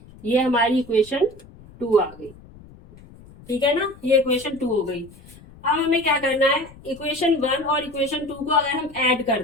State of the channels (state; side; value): noise; left; rumble, 22 dB below the sound